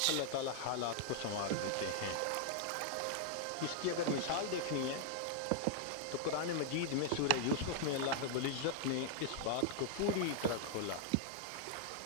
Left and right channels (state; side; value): different; both; correlation -0.01